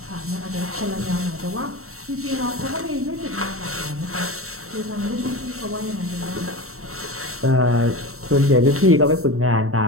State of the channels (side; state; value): left; late; 0.63 ms